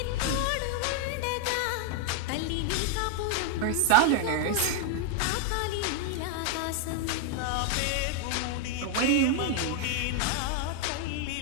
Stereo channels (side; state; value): both; different; correlation 0.00